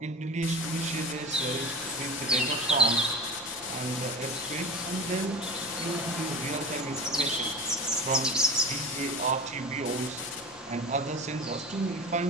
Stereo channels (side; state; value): both; normal; correlation 0.30